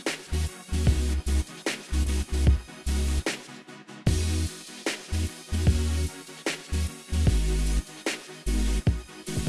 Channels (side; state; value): both; identical; correlation 1.00